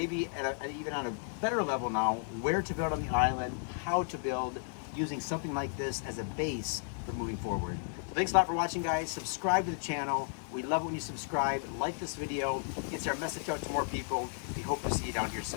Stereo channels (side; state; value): right; silent; 55 dB below the other